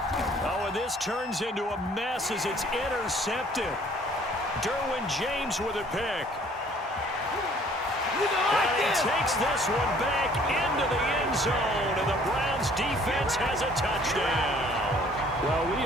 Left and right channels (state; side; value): normal; both; correlation 0.57